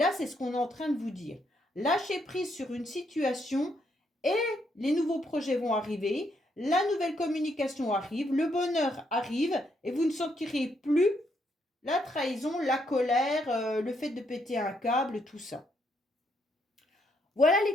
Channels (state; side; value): normal; both; correlation 0.75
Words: c'est ce qu'on est en train de vous dire. Lâchez prise sur une situation et les nouveaux projets vont arriver, la nouvelle communication arrive, le bonheur arrive et vous ne sentirez plus la trahison, la colère, le fait de péter un câble, tout ça. Voilà les